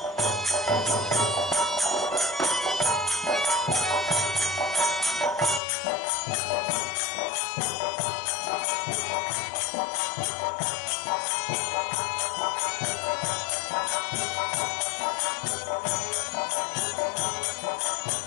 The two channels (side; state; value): right; drops out; at 5.6 s